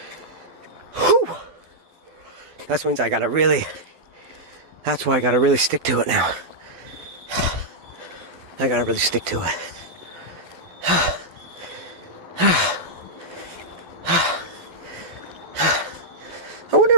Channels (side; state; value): left; late; 12 ms